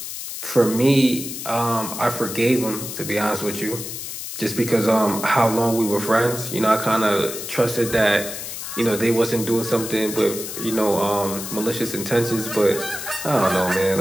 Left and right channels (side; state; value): left; noise; hiss, 8 dB below the sound